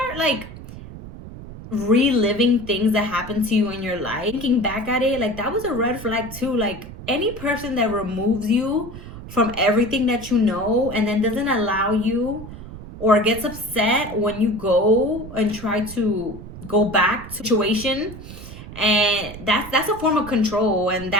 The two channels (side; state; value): right; noise; rumble, 13 dB below the sound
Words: like reliving things that happened to you in your life, thinking back at it, like that was a red flag too. Like any person that removes you from everything that you know and then doesn't allow you, or gets upset when you go and try to go back to situation, and that's a form of control, and